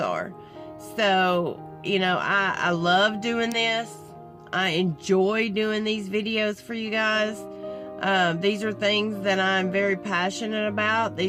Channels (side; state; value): both; identical; correlation 1.00